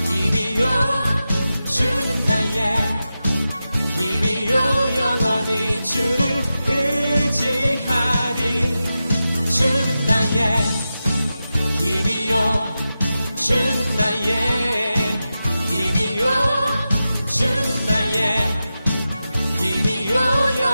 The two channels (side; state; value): both; inverted; correlation -0.92